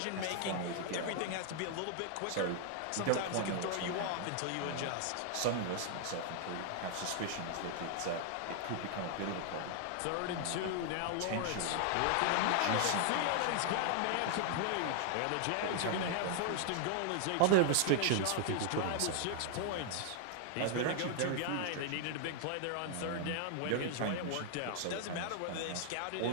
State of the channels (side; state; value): both; different; correlation 0.00